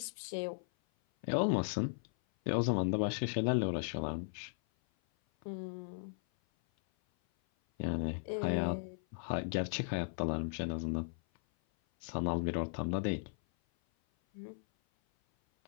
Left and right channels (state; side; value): silent; right; 53 dB below the other